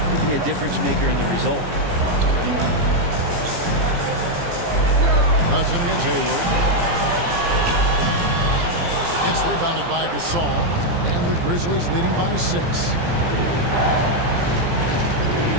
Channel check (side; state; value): left; late; 17 ms